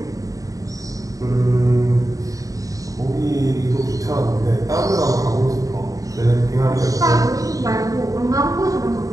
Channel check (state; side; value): late; left; 0.16 ms